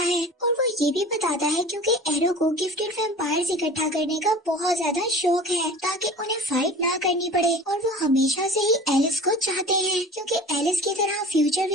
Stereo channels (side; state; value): both; normal; correlation 0.40